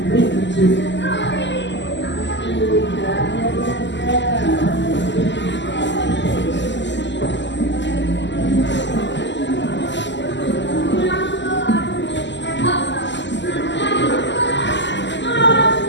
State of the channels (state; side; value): late; right; 0.53 ms